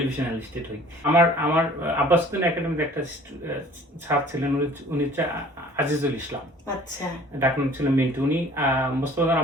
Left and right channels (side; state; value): both; normal; correlation 0.50